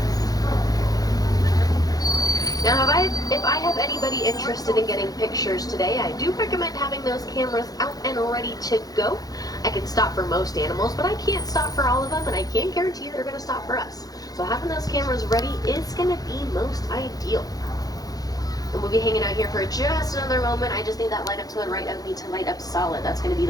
Now, if I have anybody interested in getting pictures today, I do recommend having those cameras out and ready to go. I can stop for most animals, but I can't stop for all of them, and I can't guarantee they're going to stop for us. So having those cameras ready is going to be most ideal. And we'll be hanging out here for just another moment. I just need that light up to the right of me to light up solid. That's going to be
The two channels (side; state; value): right; late; 0.18 ms